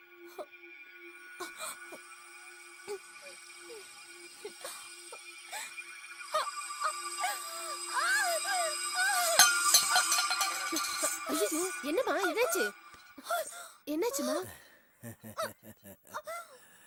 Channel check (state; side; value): identical; both; correlation 1.00